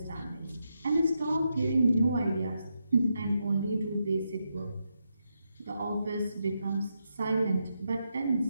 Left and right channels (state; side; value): inverted; both; correlation -0.83